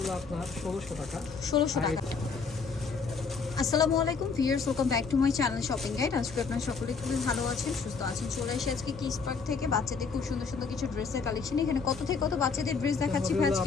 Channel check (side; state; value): right; quieter; 5.1 dB